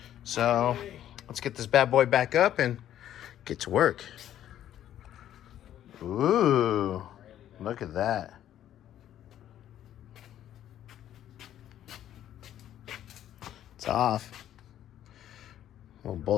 So let's get this bad boy back up and get to work. Ooh, look at that. It's off. Well,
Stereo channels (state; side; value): quieter; right; 11.4 dB